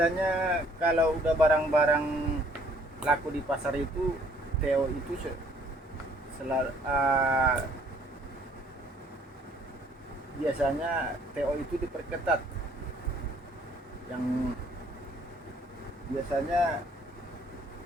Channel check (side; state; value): both; normal; correlation 0.61